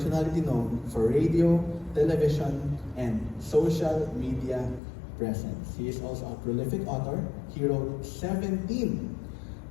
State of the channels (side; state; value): right; drops out; at 4.8 s